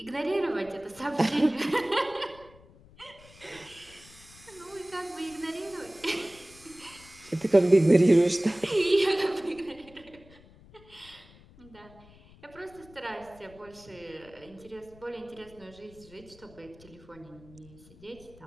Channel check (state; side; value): noise; left; rumble, 23 dB below the sound